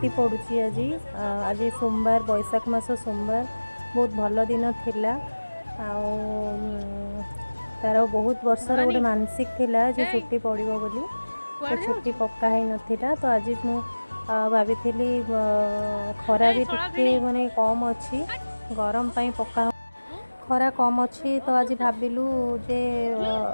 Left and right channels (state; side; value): inverted; both; correlation -1.00